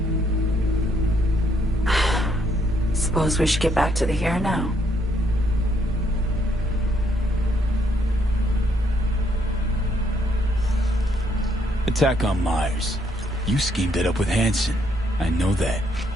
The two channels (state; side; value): normal; both; correlation 0.71